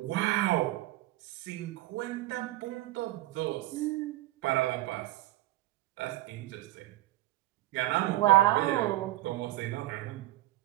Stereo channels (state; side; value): quieter; left; 17.5 dB